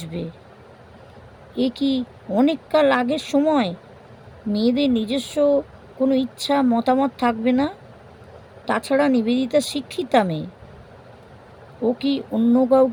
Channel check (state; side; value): identical; both; correlation 1.00